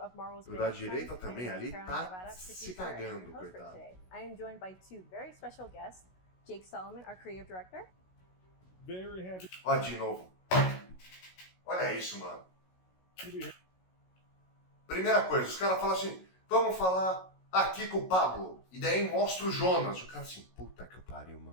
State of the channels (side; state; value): right; late; 16 ms